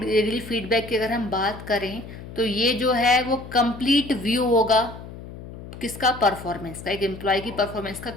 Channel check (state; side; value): noise; left; hum, 13 dB below the sound